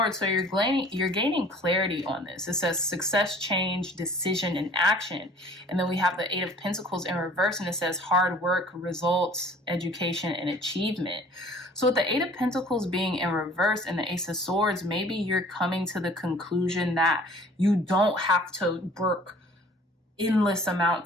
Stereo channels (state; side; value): normal; both; correlation 0.51